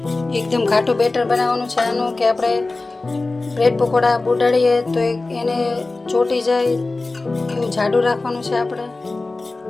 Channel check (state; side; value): quieter; right; 3.3 dB